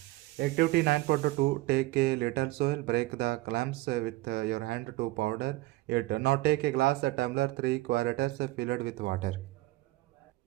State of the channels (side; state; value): left; quieter; 19.4 dB